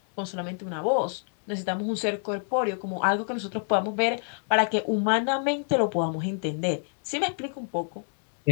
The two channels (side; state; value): right; silent; 60 dB below the other